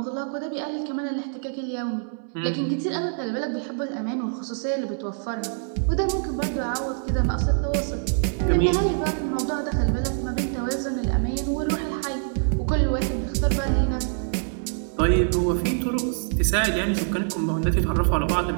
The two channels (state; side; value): silent; left; 62 dB below the other